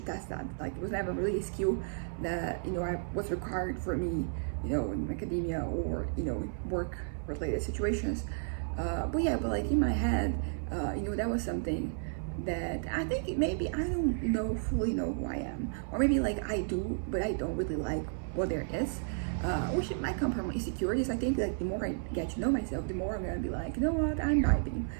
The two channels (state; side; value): silent; left; 56 dB below the other